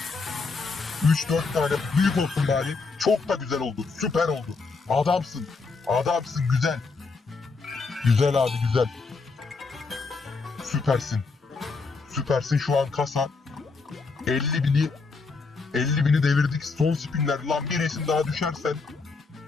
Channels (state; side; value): quieter; right; 4.3 dB